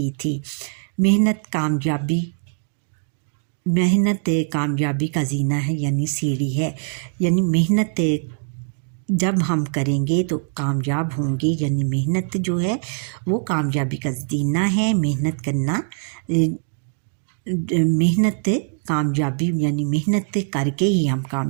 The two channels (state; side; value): silent; left; digital silence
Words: تھی. محنت کامیابی کا زینہ ہے یعنی سیڑھی ہے. یعنی محنت جب ہم کریں گے تو کامیاب ہوں گے. یعنی محنت جو ہے وہ کامیابی کا زینہ ہے. محنت کامیابی یعنی محنت کر کے ہی ہم